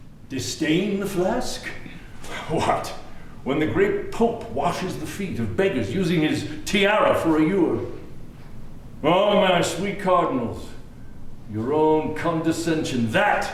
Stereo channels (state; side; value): identical; both; correlation 1.00